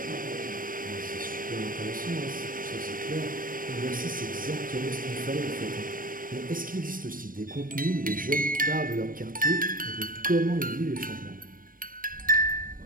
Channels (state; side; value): late; left; 0.40 ms